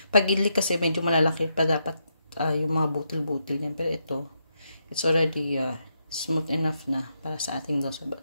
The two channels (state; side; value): inverted; both; correlation -0.81